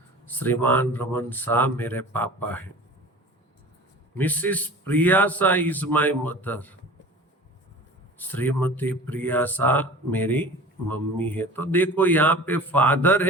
Shriman Raman Shah मेरे पापा हैं। Missus Priya Shah is my mother. Shrimati Priya Shah मेरी मम्मी है। तो देखो यहाँ पे फादर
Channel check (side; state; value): both; normal; correlation 0.40